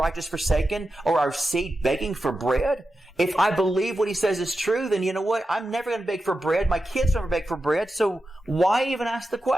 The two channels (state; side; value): normal; both; correlation 0.91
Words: forsaken or our seed begging for bread? If I believe what he says is true, then you know what? I'm never going to beg for bread. My kids never beg for bread. So why even ask the